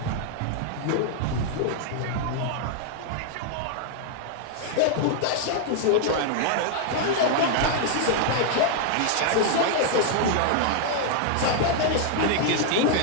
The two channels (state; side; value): different; both; correlation 0.00